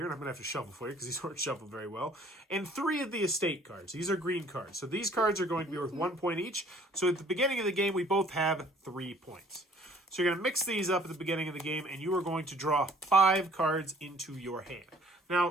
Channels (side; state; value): both; normal; correlation 0.56